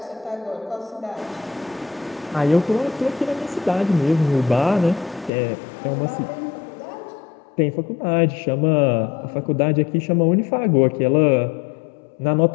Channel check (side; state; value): right; drops out; at 5.3 s